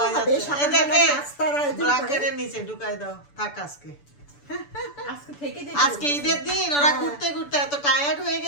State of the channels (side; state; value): right; late; 6.9 ms